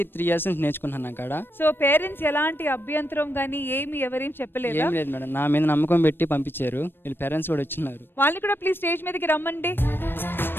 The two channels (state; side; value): late; right; 0.099 ms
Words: 3 years నుంచి నేర్చుకున్నాను అక్కడ. సో పేరెంట్స్ ఎలాంటి అభ్యంతరం గానీ ఏం చెప్పలేదు? ఏం లేదు మేడం, నా మీద నమ్మకం పెట్టి పంపించారు. వీళ్ళ పేరెంట్స్ కూడా వచ్చినారు. వాళ్ళని కూడా ప్లీజ్ స్టేజ్ మీదకి రమ్మండి.